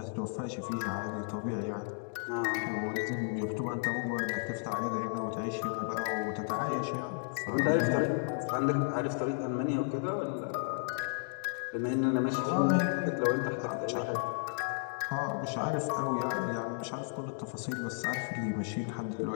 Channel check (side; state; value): right; silent; digital silence